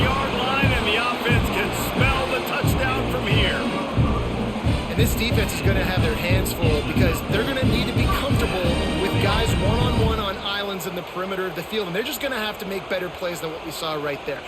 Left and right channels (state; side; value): identical; both; correlation 1.00